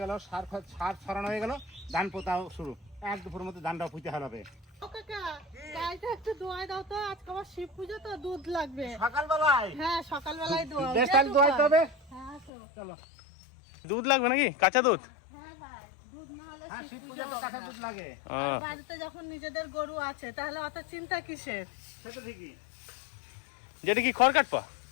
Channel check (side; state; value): right; drops out; at 12.5 s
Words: গেল, সার ছড়ানো হয়ে গেল, ধান পোতাও শুরু। এক দুপুরের মধ্যে ধানটাও পুঁতে হবে। একটু দোয়াই দাও তো, আজকে আবার শিব পুজো তো, দুধ লাগবে সকালবেলায়। হ্যাঁ, সকালবেলায় দোয়া। বেশ, তাহলে দোয়াইতে হবে। হ্যাঁ, চলো। দুধ লাগবে নাকি? কাঁচা দুধ? হ্যাঁ ভাই, দুধ না হলে হ্যাঁ, শিব শিব পুজো পুজোতে হবে কাঁচা না। দুধ লাগে। আর বাড়িতে যখন নিজেদের গরু আছে তাহলে অত চিন্তা কিসের? সেটা ঠিকই। যেটা কি খড় কাটপা?